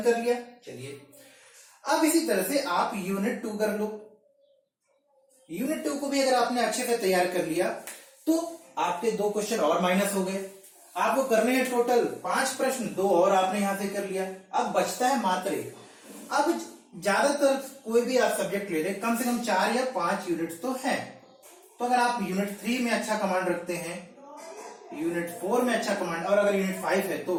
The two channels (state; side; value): identical; both; correlation 1.00